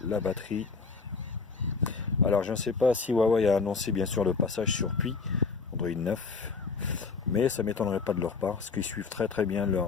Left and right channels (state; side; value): quieter; right; 4.8 dB